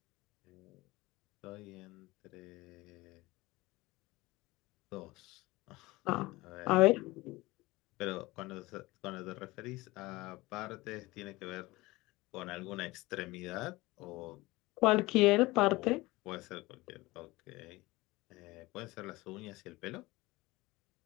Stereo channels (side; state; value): right; quieter; 20.8 dB